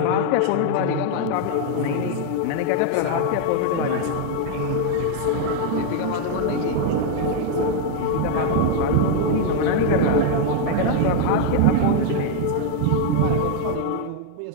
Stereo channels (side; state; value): both; different; correlation 0.00